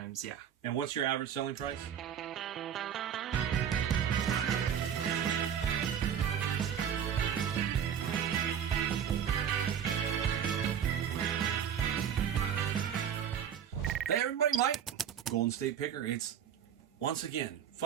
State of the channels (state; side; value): quieter; left; 8.7 dB